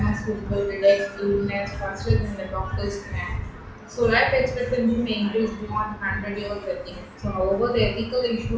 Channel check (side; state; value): both; identical; correlation 1.00